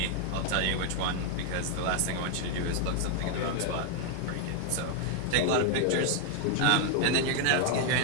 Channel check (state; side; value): different; both; correlation 0.00